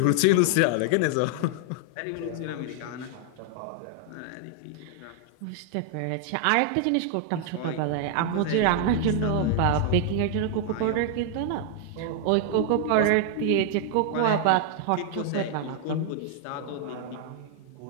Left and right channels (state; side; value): different; both; correlation 0.00